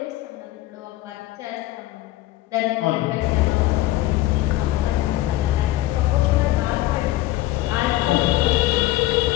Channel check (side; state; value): right; quieter; 16.4 dB